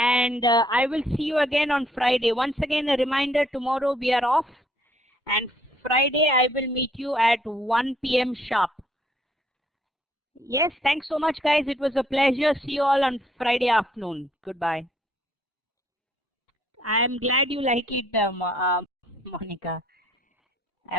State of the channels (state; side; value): normal; both; correlation 0.66